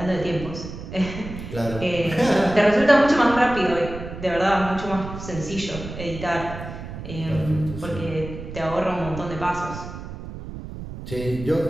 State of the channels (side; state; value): right; noise; rumble, 10 dB below the sound